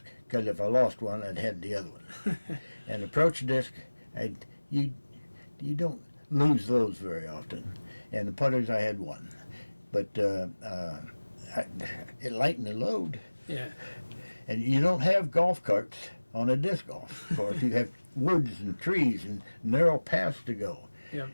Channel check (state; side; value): inverted; both; correlation -1.00